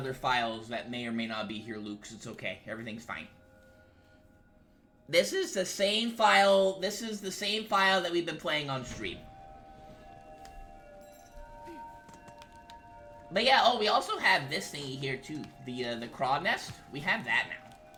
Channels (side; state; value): both; identical; correlation 1.00